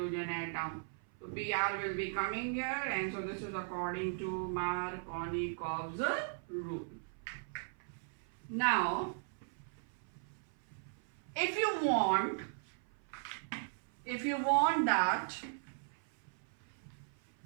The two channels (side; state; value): left; silent; 52 dB below the other